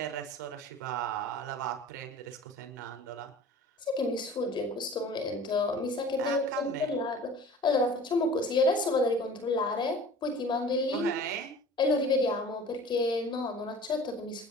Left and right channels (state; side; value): normal; both; correlation 0.43